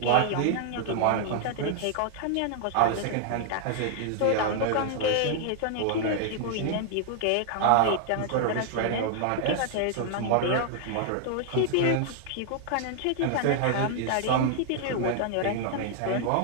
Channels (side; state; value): both; different; correlation 0.00